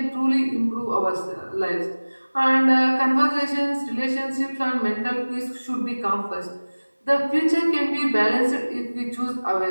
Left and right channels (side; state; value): both; inverted; correlation -1.00